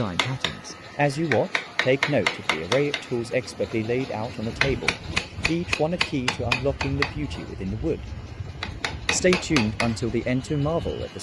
patterns. As you watch, take note of the array of tools expertly laid out on the table, each one a key to unlocking the beauty within the wood. Stay tuned until the end to marvel at the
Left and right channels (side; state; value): both; identical; correlation 1.00